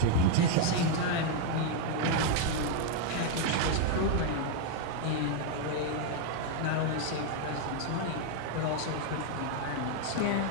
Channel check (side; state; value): both; different; correlation 0.01